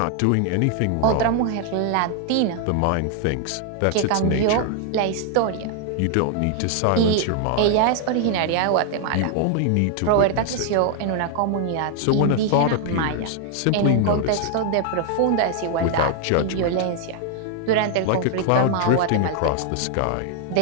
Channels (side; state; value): both; different; correlation 0.00